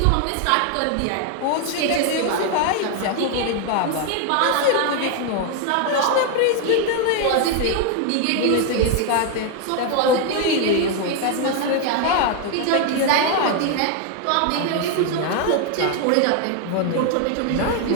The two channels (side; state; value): both; different; correlation 0.01